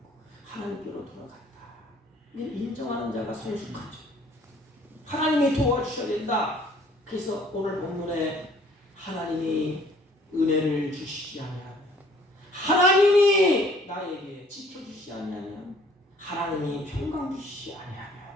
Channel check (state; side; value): normal; both; correlation 0.57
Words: 하나님께로 돌아간다. 이걸 인정하는 자가 성숙하죠. 하나님이 도와주셔야 된다. 그래서 오늘 본문에 하나님이 은혜를 주시지 아니하며 하나님이 나에게 지켜주시지 아니하며 하나님이 평강 주시지 아니하며